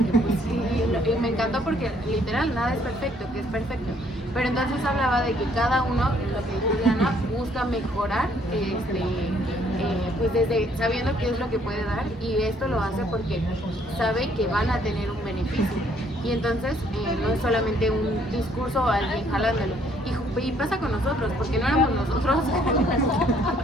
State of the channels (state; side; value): normal; both; correlation 0.65